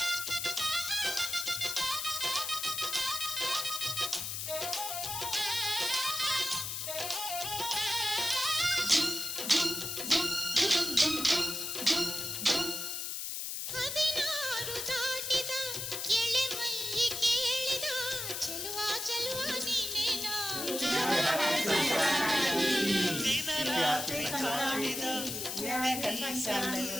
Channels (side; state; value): left; noise; hiss, 4 dB below the sound